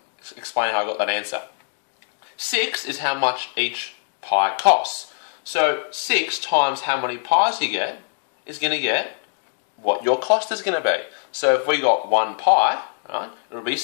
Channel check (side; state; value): right; silent; digital silence